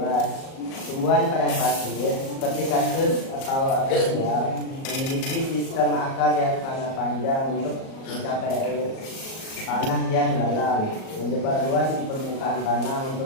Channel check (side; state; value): right; late; 37 ms